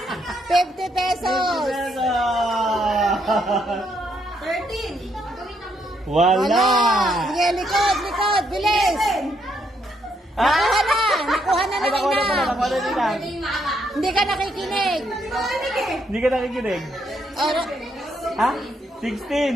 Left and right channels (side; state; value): both; normal; correlation 0.75